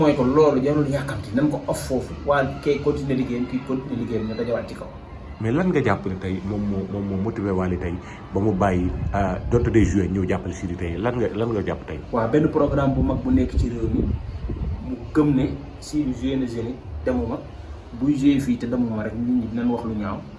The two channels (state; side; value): identical; both; correlation 1.00